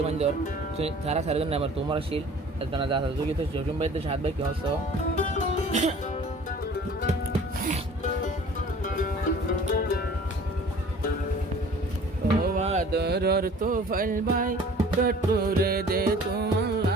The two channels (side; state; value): both; normal; correlation 0.48